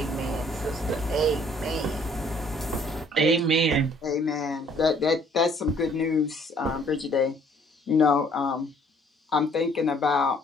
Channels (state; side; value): normal; both; correlation 0.60